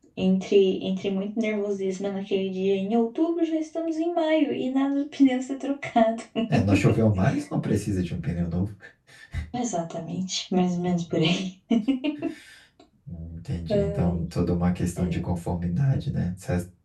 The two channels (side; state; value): both; identical; correlation 1.00